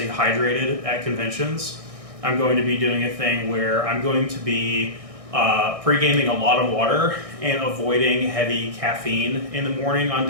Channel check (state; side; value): late; left; 1.6 ms